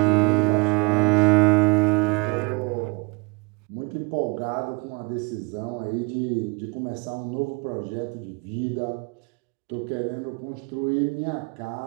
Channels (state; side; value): quieter; left; 28.7 dB